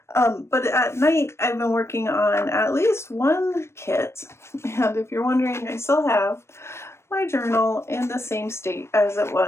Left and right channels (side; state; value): right; late; 0.13 ms